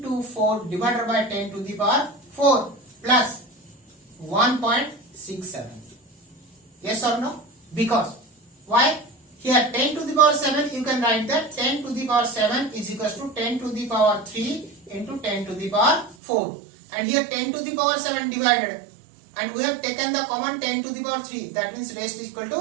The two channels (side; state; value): left; drops out; at 16.2 s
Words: divided by 10 to the power 4 plus 1.67. Yes or no? Because why? Here 10 to the power 7, you can write that 10 to the power 7 is equals to 10 to the power 3 into 10 to the power 4. And here 10 to the power 7 divided. And we have taken the common 10 to the power 3. That means rest is equal